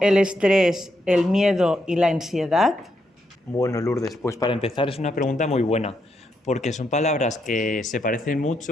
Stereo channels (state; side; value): normal; both; correlation 0.80